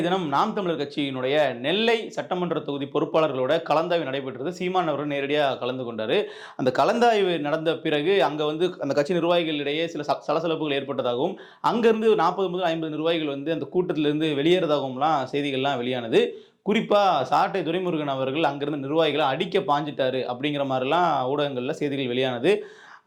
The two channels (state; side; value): identical; both; correlation 1.00